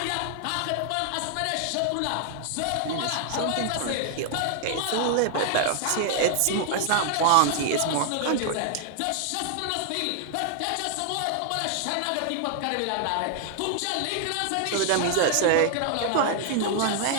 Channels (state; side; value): different; both; correlation 0.00